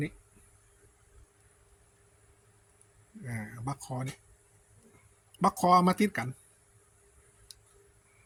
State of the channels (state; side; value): identical; both; correlation 1.00